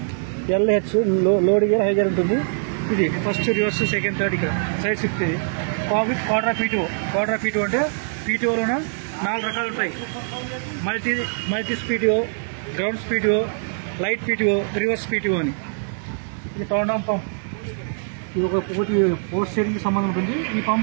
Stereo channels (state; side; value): silent; left; digital silence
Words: LH load gear, high gear ఉంటుంది. ఇది ఫస్ట్, రివర్స్, సెకండ్, థర్డ్. ఇక్కడ సైడ్ షిఫ్ట్. ఇది quarter of PTO. Quarter of PTO అంటే PTOలోన 4 రకాలు ఉంటాయి. Multi PTO, grounds PTO, light PTO, reverse PTO అని. ఇది కౌండమ్ పంప్. ఇది ఒకటి పోస్ట్ స్టీరింగ్కి సంబంధం ఉంటుంది. ఈ